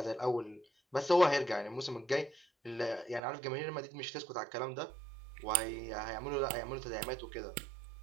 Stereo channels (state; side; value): drops out; left; at 3.2 s